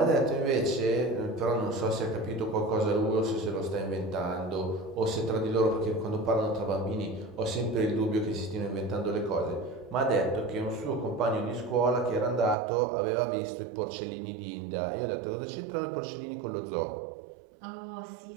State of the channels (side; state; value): left; drops out; at 12.6 s